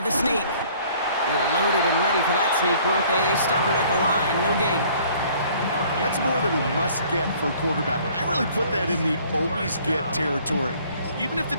the sneak. They were loaded and ready for that sneak, weren't they? They stop him at the line. No gain. That's more than a must-get for a quarterback. I really put that in the always-get territory. Even if the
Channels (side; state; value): both; inverted; correlation -0.56